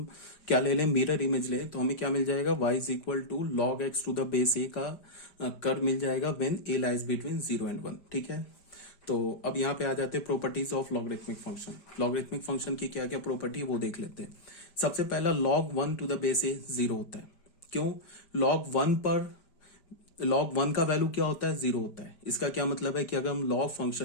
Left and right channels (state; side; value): late; right; 5.0 ms